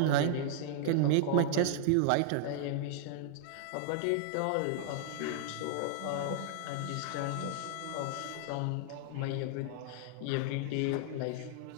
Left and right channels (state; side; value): different; both; correlation -0.01